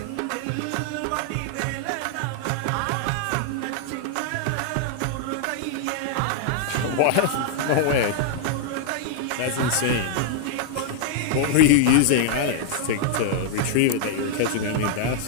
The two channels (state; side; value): different; both; correlation -0.01